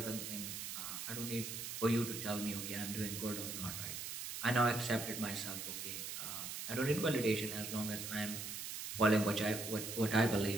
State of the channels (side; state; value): right; noise; hiss, 6 dB below the sound